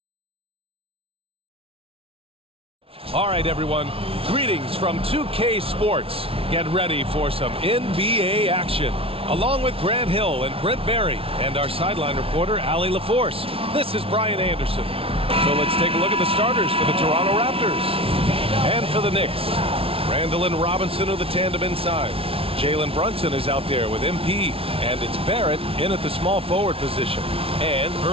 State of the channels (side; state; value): left; late; 0.27 ms